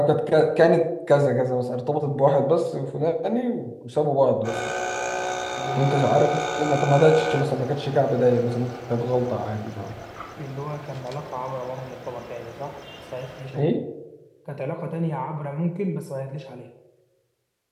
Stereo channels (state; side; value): identical; both; correlation 1.00